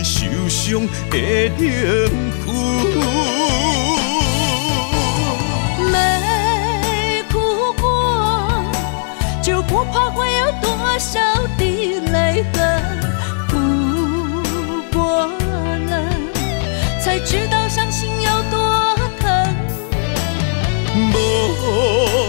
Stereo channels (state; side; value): silent; right; 59 dB below the other